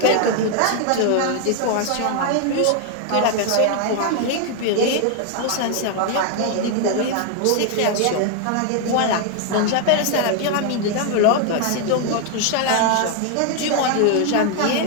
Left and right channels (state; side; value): different; both; correlation 0.00